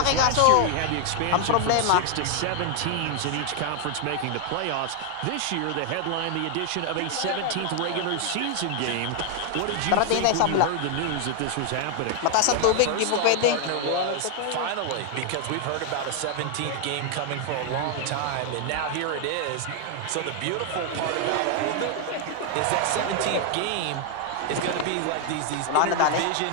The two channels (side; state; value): both; different; correlation 0.00